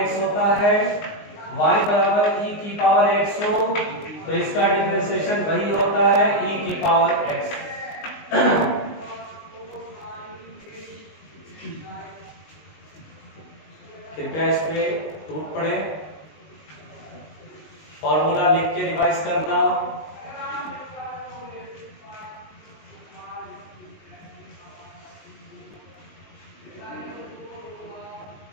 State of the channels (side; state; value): right; late; 19 ms